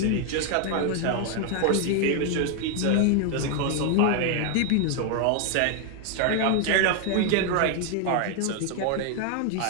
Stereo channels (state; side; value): different; both; correlation 0.00